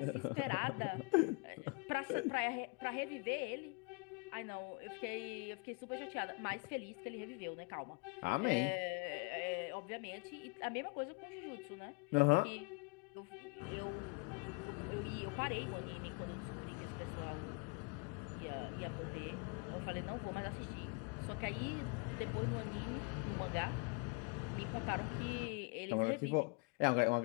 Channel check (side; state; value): right; quieter; 31.6 dB